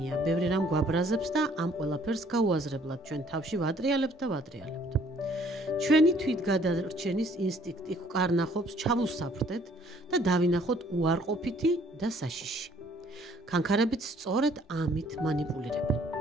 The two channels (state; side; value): normal; both; correlation 0.60